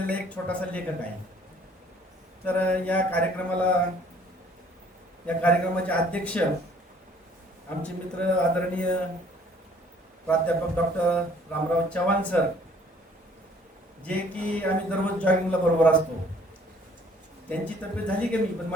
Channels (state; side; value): normal; both; correlation 0.57